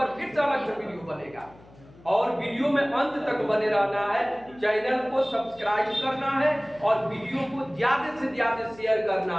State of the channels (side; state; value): left; noise; hum, 24 dB below the sound